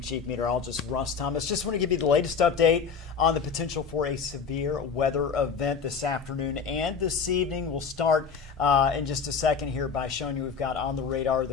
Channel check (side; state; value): right; quieter; 5.9 dB